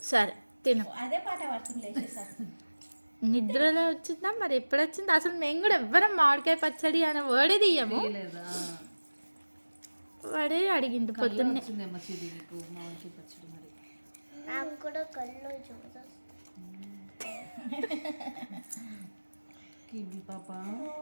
సరే తిను. అదే పాట పడుతుంది. నిద్రలో వచ్చిందా మరి ఎప్పుడు వచ్చింది? అసలు మేము కూడా ఎవ్వరం మామిడికాయ పచ్చడి అనే వర్డే తీయము. లేదా వాడే అడిగింది పొద్దున్నే. వచ్చిందేమో చిరి నీకు మామిడికాయ పచ్చడి మరి. నాకు కూడా కళ్ళు చూడదు. కివి పాప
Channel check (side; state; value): both; inverted; correlation -1.00